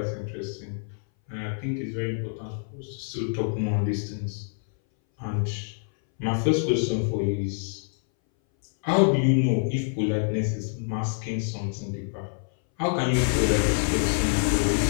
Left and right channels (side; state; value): right; silent; 60 dB below the other